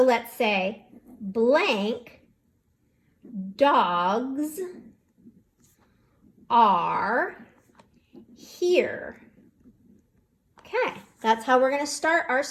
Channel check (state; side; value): identical; both; correlation 1.00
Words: let's say blank dogs are here. Okay, that's how we're going to start our